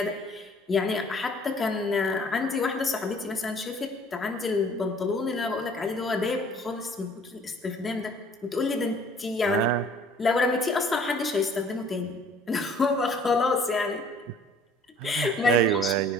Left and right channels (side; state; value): both; normal; correlation 0.54